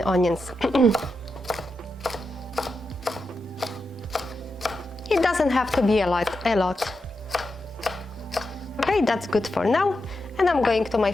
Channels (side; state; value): both; normal; correlation 0.88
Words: onions. It doesn't have to be a lot. Okay, that's good for now. And I'm going to my